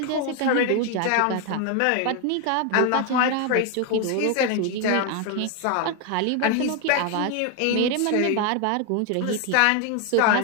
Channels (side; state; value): both; different; correlation 0.01